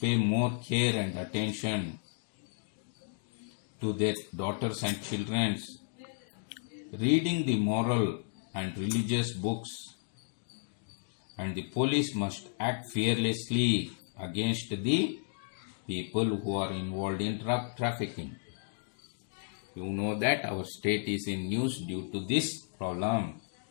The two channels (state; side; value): silent; right; digital silence